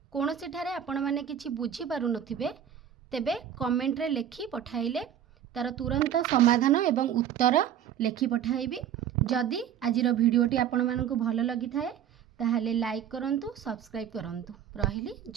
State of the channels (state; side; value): quieter; left; 9.6 dB